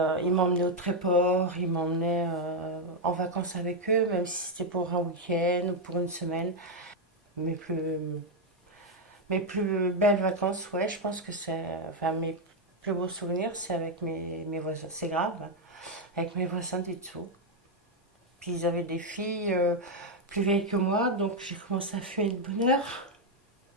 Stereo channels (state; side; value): normal; both; correlation 0.02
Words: ils m'emmenaient au Tréport, ils m'emmenaient en vacances avec eux, même si c'était pour un week-end ou pour une semaine. Mes plus belles vacances, ouais, je pense que c'est... Enfin, mes plus beaux souvenirs, c'est avec mes voisins. C'est grave, hein, avec mes voisins du dessous. Puis ils avaient des filles plus vieilles que moi, donc j'ai commencé à fumer de bonne heure.